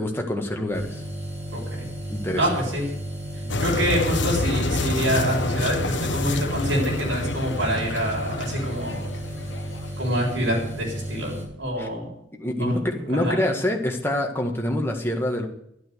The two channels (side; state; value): both; normal; correlation 0.48